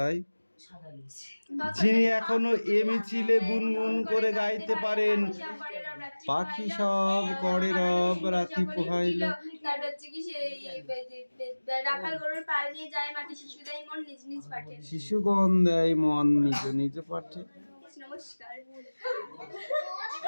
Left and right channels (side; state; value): both; inverted; correlation -1.00